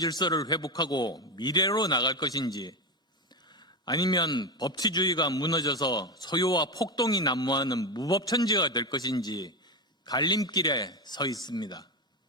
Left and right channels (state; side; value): normal; both; correlation 0.15